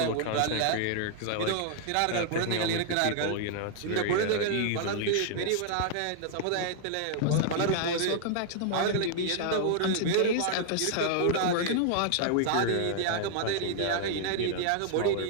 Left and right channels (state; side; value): different; both; correlation -0.01